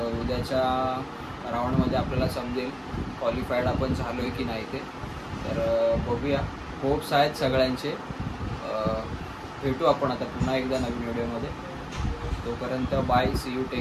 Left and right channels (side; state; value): both; identical; correlation 1.00